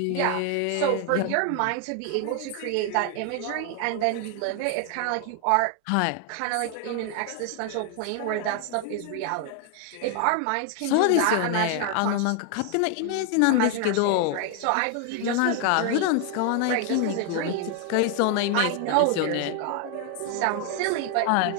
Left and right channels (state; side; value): different; both; correlation 0.00